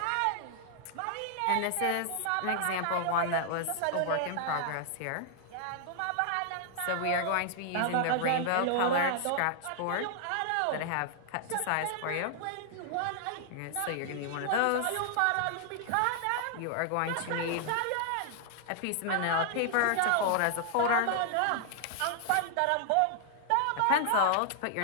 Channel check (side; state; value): both; different; correlation -0.01